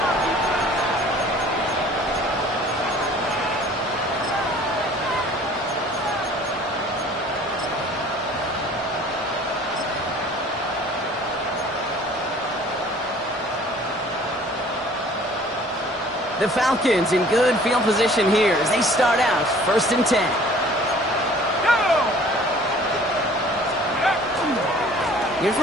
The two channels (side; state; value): both; normal; correlation 0.51